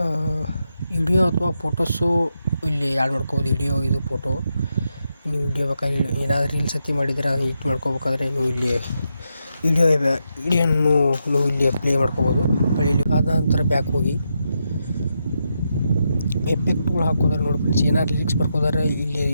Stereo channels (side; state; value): both; inverted; correlation -0.84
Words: ವಿಡಿಯೋ ಅಥವಾ ಫೋಟೋಸು ಇಲ್ಲಿ ಆ್ಯಡ್ ಮಾಡ್ಕೋಬೋದು. ವಿಡಿಯೋ ಇದು ಫೋಟೋ ನೀವು ವಿಡಿಯೋ ಬೇಕಾದ್ರೆ ಏನಾದರೂ ರೀಲ್ಸ್ ಅತಿ ಮಾಡಿದರೆ ಎಡಿಟ್ ಮಾಡ್ಕೋಬೇಕಾದ್ರೆ ನೀವು ಇಲ್ಲಿ ವಿಡಿಯೋನ್ನು ನೀವು ಇಲ್ಲಿ ಪ್ಲೇ ಮಾಡ್ಕೋಬೋದು. ಇಲ್ಲಿ ಆದ ನಂತರ ಬ್ಯಾಕ್ ಹೋಗಿ ಎಫೆಕ್ಟ್ಗಳು ಹಾಕೋದಾರೆ ನೋಡಿ ಫ್ರೆಂಡ್ಸ್. ಏನಾದ್ರು ಲಿರಿಕ್ಸ್ ಬರ್ಕೋದಾರೆ